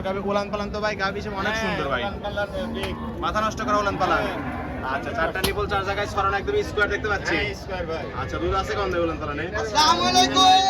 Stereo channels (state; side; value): identical; both; correlation 1.00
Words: গাভী। উলান পালান তো ভাই গাভী হিসেবে অনেক সুন্দর ভাই। হ্যাঁ, কালার বিগ। মাথা নষ্ট করা উলান পালান। আচ্ছা, 4টা নিপল 4 জায়গায় ছড়ানো একদম স্কোয়ার দেখতে পাচ্ছি। হ্যাঁ, স্কয়ার ভাই। আচ্ছা, দুধ আছে কোন উলান পালানে? আসসালামু